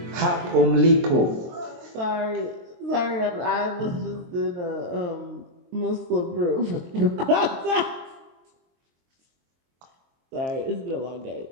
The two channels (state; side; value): late; left; 23 ms